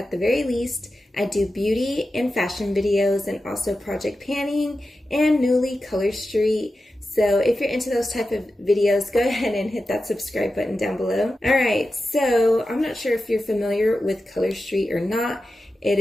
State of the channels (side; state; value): both; normal; correlation 0.92